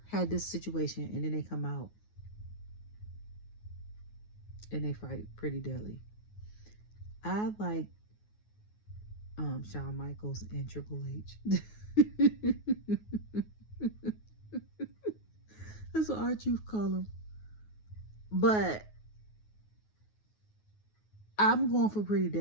had this situation, and then they come out and they fight Pretty Deadly. I like Shawn Michaels and Triple H. That's what our truth call them. But I'm going for Pretty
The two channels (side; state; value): right; late; 9.4 ms